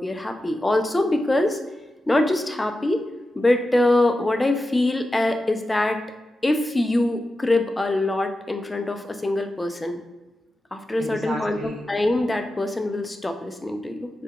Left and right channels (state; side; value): normal; both; correlation 0.92